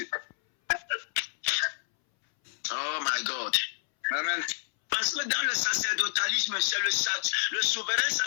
Oh my God. Amen. Parce que dans le sacerdotalisme, c'est le souverain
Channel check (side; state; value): right; silent; 59 dB below the other